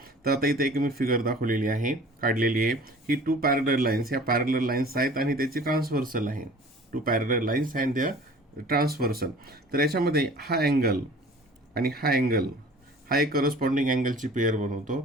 तर आता इथे एक मी फिगर दाखवलेली आहे, काढलेली आहे. ही टू पॅरलल लाईन्स, ह्या पॅरलल लाईन्स आहेत आणि त्याची ट्रान्सव्हर्सल आहे. टू पॅरलल लाईन्स अँड द्या ट्रान्सव्हर्सल. तर याच्यामध्ये हा अँगल आणि हा अँगल हा एक करस्पॉन्डिंग अँगलची पेअर बनवतो.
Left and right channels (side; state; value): both; normal; correlation 0.46